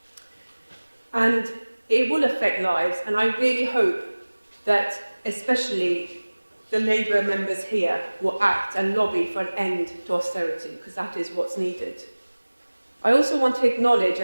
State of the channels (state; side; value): inverted; both; correlation -1.00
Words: And it will affect lives, and I really hope that especially the Labour members here will act and lobby for an end to austerity, because that is what's needed. I also want to acknowledge